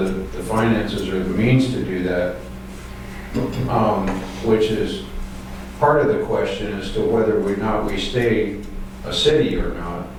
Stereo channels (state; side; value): identical; both; correlation 1.00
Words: the finances or the means to do that, which is part of the question as to whether or not we stay a city or